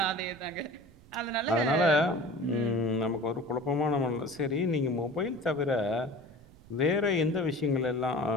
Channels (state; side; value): noise; right; rumble, 23 dB below the sound